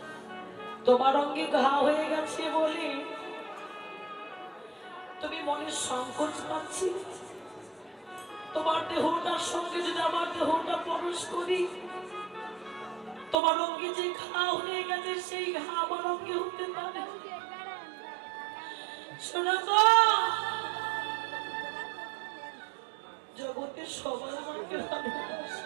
তোমার অঙ্গে ঘা হয়ে গেছে বলে তুমি মনে সংকোচ পাচ্ছি। তোমার দেহটার সঙ্গে যদি আমার দেহটা প্রবেশ করি, তোমার অঙ্গে যে ঘা হয়ে গেছে সেই ঘা আমার অঙ্গে হতে পারে। সনাতন জগতে সবাই আমাকে ভালোবাসে।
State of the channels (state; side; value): drops out; left; at 13.4 s